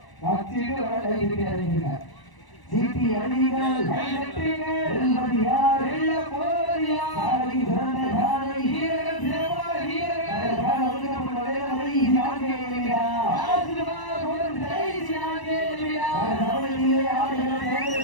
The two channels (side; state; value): right; late; 1.0 ms